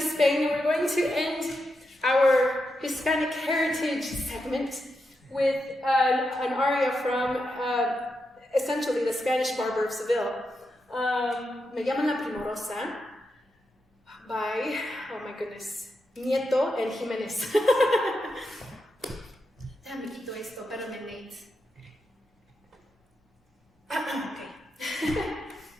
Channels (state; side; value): normal; both; correlation 0.86